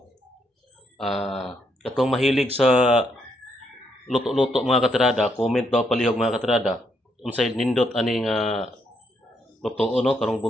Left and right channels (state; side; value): normal; both; correlation 0.76